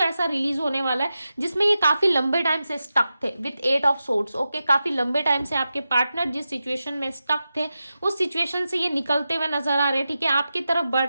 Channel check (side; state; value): both; inverted; correlation -0.91